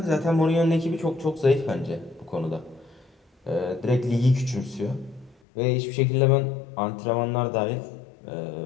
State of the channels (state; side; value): drops out; right; at 5.4 s